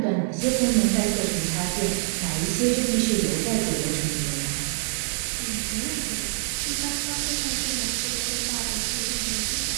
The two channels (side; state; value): left; silent; digital silence